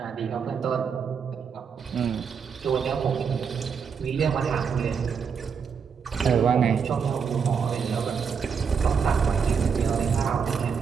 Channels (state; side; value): quieter; left; 6.4 dB